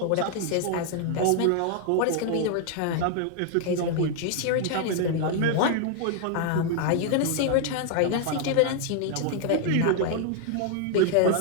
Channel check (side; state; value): both; different; correlation 0.00